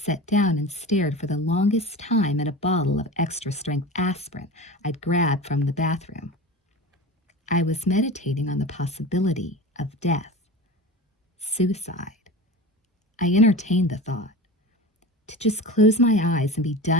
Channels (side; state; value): both; normal; correlation 0.32